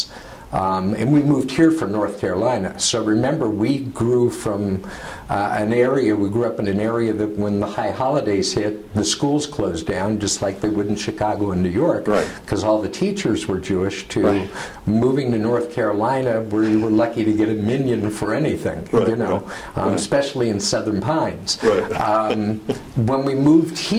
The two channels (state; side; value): identical; both; correlation 1.00